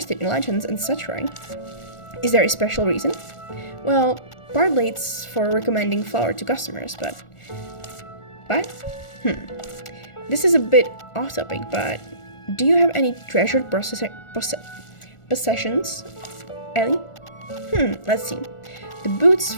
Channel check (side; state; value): right; late; 1.4 ms